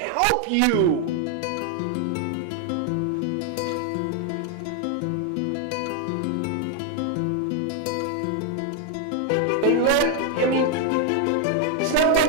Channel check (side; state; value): both; different; correlation 0.00